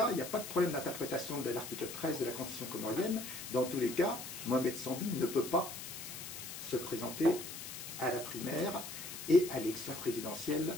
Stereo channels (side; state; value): left; noise; hiss, 9 dB below the sound